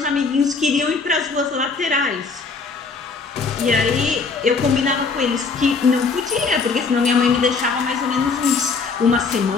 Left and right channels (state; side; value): quieter; right; 4.6 dB